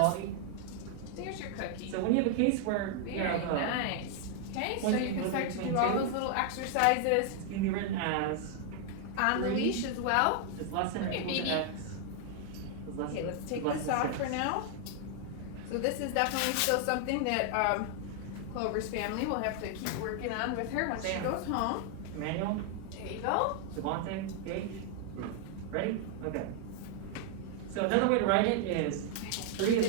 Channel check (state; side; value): different; both; correlation 0.00